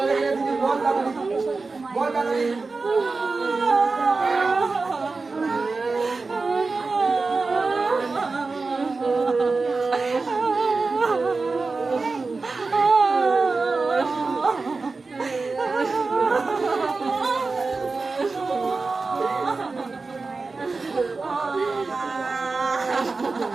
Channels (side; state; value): left; quieter; 4.0 dB